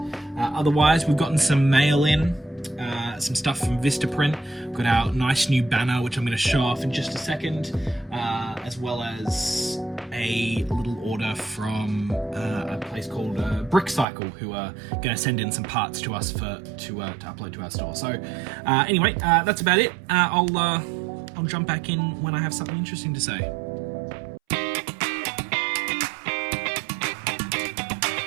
Otherwise, we've gotten some mail in, some stuff from Vistaprint. We've got our nice new banner, which I'm going to show off in just a second, as well as a little order from a place called BrickCycle, who are going to send in some parts to us to upload to our store. So anyway, that's about it. I'll jump back in when I have something interesting to say.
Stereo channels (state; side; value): drops out; left; at 14.1 s